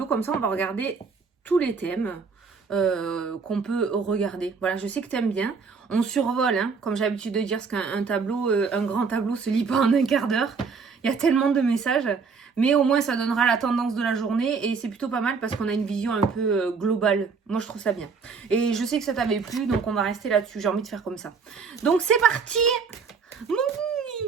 comme ça on va regarder tous les thèmes qu'on peut regarder. Voilà, je sais que tu aimes bien. On survole, hein, comme j'ai l'habitude de dire, parce qu'un tableau, un grand tableau se lit pas en un quart d'heure. Il y a tellement de messages. Mais au moins, ça donnera la tendance de la journée. Et c'est plutôt pas mal parce qu'on a une vision un peu globale. Moi, je trouve ça bien. Et je sais que ça t'avait plu, donc on va rester là-dessus. J'ai envie de faire comme ça. Donc, c'est parti.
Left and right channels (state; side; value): quieter; left; 5.3 dB